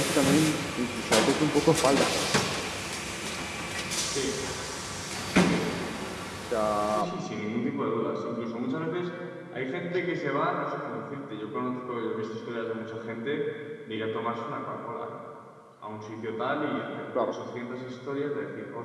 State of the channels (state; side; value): identical; both; correlation 1.00